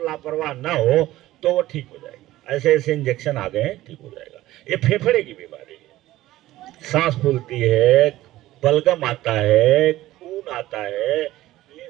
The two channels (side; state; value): left; quieter; 15.8 dB